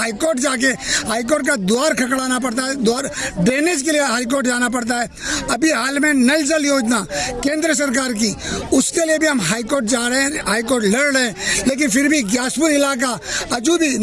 जाके हाईकोर्ट का द्वार खड़काना पड़ता है, द्वार ड्रेनेज के लिए हाईकोर्ट जाना पड़ता है। अभी हाल में नल जल योजना केंद्र सरकार की, उसके लिए भी हम हाईकोर्ट जा रहे हैं, हाईकोर्ट लड़ रहे हैं, लेकिन फिर भी ग्यासपुर इलाका अजू भी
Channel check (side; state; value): both; identical; correlation 1.00